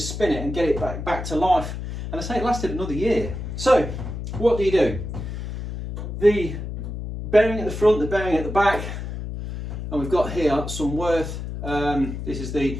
it and get it back to life, and I say it lasted another year. So what do? The bearing at the front, the bearing at the back, and we've got here some Worth, this is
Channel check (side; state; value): left; noise; hum, 7 dB below the sound